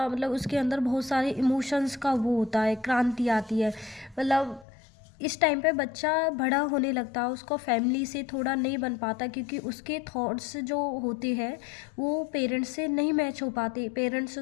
मतलब उसके अंदर बहुत सारे इमोशंस का वो होता है, क्रांति आती है। मतलब इस टाइम पे बच्चा बड़ा होने लगता है, उसको फैमिली से थोड़ा नहीं बन पाता क्योंकि उसके थॉट्स जो होते हैं वो पेरेंट्स से नहीं मैच हो पाते। पेरेंट्स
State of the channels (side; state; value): right; drops out; at 4.7 s